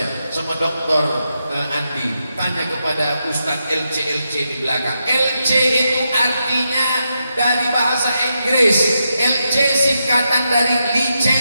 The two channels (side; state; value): both; inverted; correlation -0.84